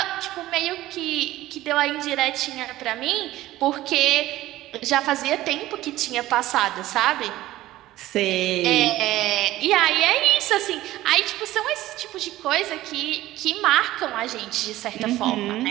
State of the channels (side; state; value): left; quieter; 15.9 dB